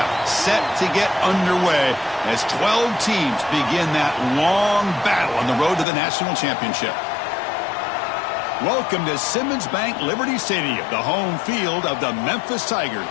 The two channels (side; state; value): right; drops out; at 5.9 s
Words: set to get underway as 12 teams begin that long battle on the road to the national championship. Welcome to Simmons Bank Liberty Stadium, the home field of the Memphis